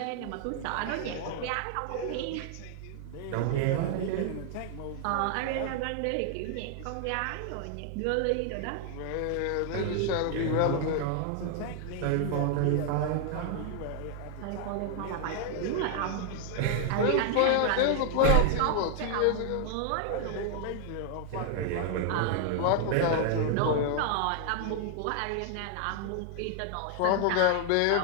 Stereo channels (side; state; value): both; different; correlation 0.00